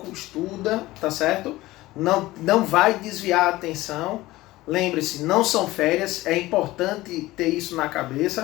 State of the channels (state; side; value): quieter; right; 18.0 dB